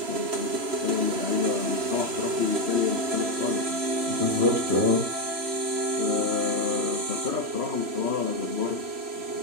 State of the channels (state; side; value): late; left; 3.0 ms